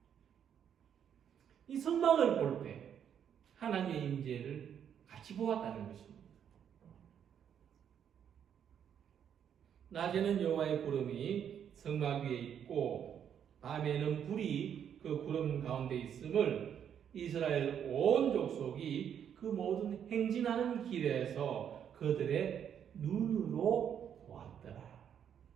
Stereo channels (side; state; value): left; quieter; 8.7 dB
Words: 이 성막을 볼 때 하나님의 임재를 같이 보았다는 것입니다. 낮에는 여호와의 구름이 성막 위에 있고 밤에는 불이 그 구름 가운데 있음을 이스라엘 온 족속이 그 모든 행진하는 길에서 그들의 눈으로 보았더라.